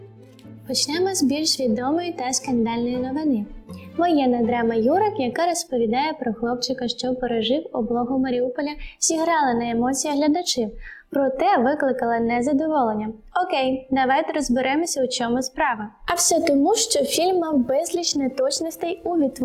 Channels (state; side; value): identical; both; correlation 1.00